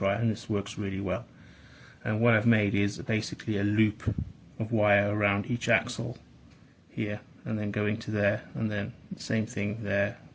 and this works really well. And what I've made is basically a loop of wire around each axle here, and then going to there, and then the same thing there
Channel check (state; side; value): identical; both; correlation 1.00